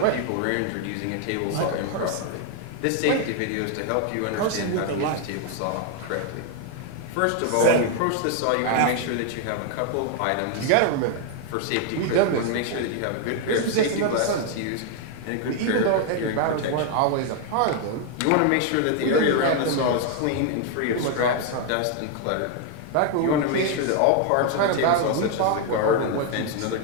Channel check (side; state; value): both; different; correlation 0.00